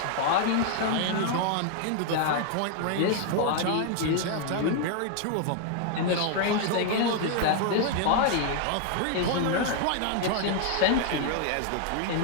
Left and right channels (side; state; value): both; different; correlation 0.00